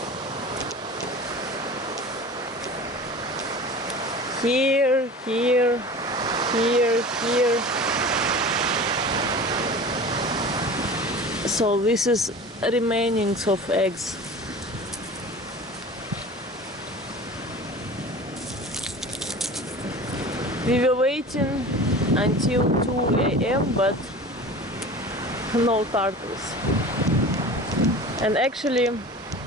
Here, here, here, here. So this is remainings of eggs. We were waiting until 2 AM, but no turtles. And actually,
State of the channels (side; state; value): both; normal; correlation 0.37